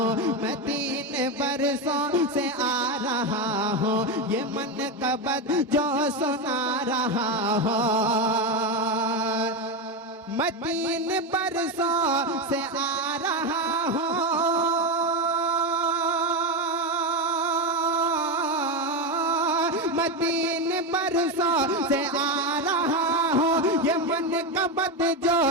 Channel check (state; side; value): normal; both; correlation 0.12